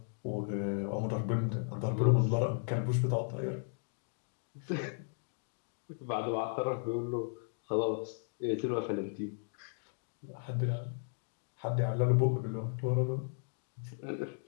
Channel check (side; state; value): right; silent; digital silence